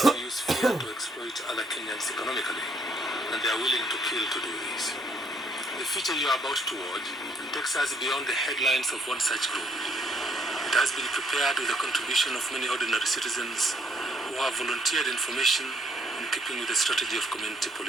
to use fear to exploit other Kenyans economically, and they are willing to kill to do this. The future you are about to watch takes us beyond the headlines of one such group. It has been prepared with the contribution of many ordinary citizens who have volunteered information in keeping with the strategy of community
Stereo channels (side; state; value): both; normal; correlation 0.69